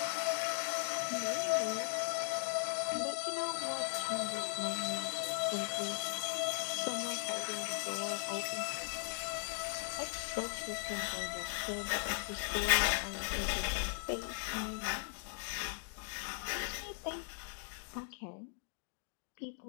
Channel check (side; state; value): right; silent; digital silence